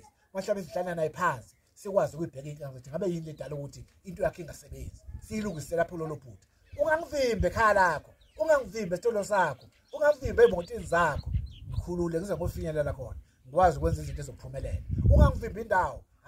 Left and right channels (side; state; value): both; identical; correlation 1.00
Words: hlala naye phansi sikwazi ukuyibheka inkinga ukuthi ngabe yini ledala ukuthi into yakhe ingasebenzi siyilungisela lapho lolo phutha ungangivimbe ekhaya lakho ungangivimbe esitolo sakho ungangivimbe emotini zakho ngikhulule ngize ngofinyelela khona ngikwazi ukwenza izinto ezophumelela ungangivimbe indawo